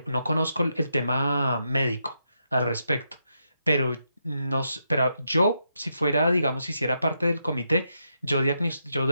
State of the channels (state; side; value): inverted; both; correlation -0.82